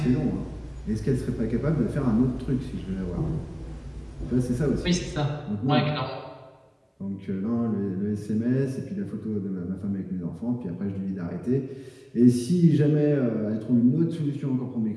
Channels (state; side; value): identical; both; correlation 1.00